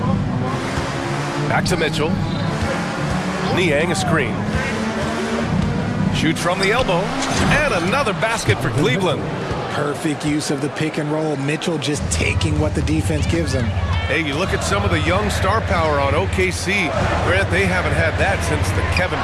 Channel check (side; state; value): both; identical; correlation 1.00